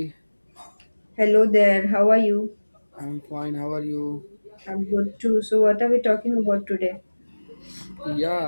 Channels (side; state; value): both; inverted; correlation -1.00